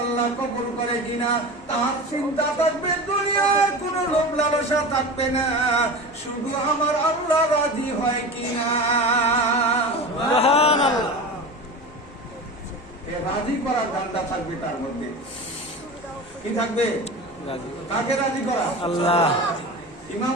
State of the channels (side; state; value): both; normal; correlation 0.30